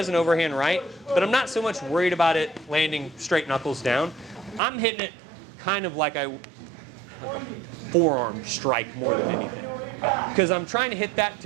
an overhand right, but I'm not so much worried about it landing straight knuckles down. I'm hitting it kind of like a forearm strike more than anything. Because I'm trying to hit that to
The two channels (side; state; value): left; drops out; at 4.6 s